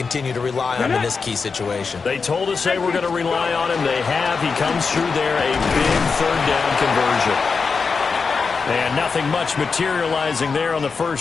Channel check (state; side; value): quieter; right; 5.0 dB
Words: to rely on him in this key situation. They told us they were going to rely on him. They have. He comes through there, a big third down conversion. And nothing much materializing there on the